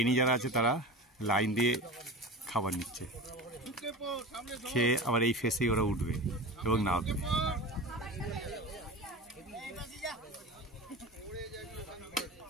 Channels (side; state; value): both; normal; correlation 0.30